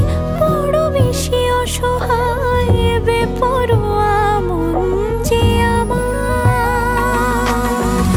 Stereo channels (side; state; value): both; identical; correlation 1.00